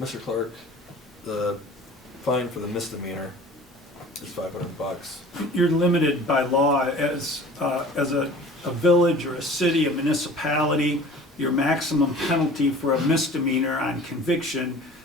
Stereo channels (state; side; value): normal; both; correlation 0.45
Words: Clark, the fine for the misdemeanor is $500. You're limited by law as a village or a city, a municipality. your maximum penalty for a misdemeanor on conviction